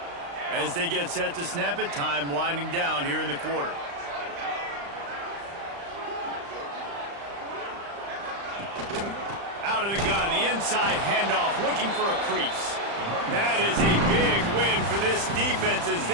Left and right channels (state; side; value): late; left; 35 ms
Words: As they get set to snap it, time winding down here in the quarter. Out of the gun, the inside handoff, looking for a crease. That is a big win for this defense as